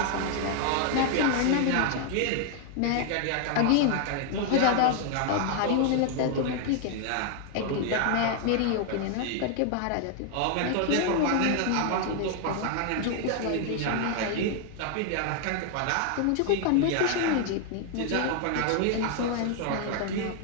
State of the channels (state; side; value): different; both; correlation 0.00